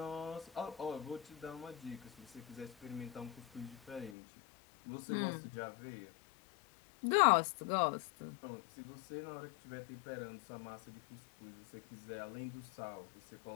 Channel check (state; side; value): drops out; right; at 4.2 s